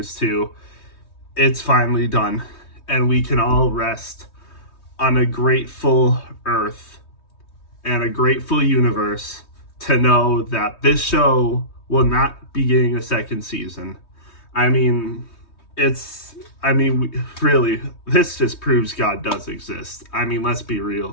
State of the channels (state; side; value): late; right; 3.2 ms